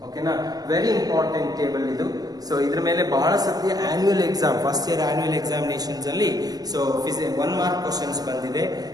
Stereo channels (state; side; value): late; left; 0.19 ms